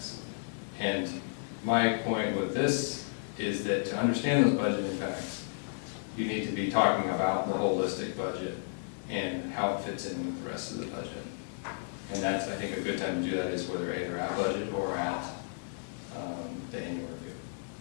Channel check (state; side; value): silent; right; digital silence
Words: And my point with this is that to understand those budget impacts, you need to be talking about the holistic budget and how it fits in with the rest of the budget. And that's, I think, a good time to do that is whether either at budget or at the annual review.